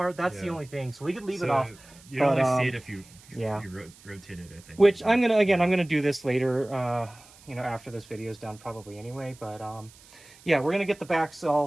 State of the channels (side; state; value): right; noise; hiss, 24 dB below the sound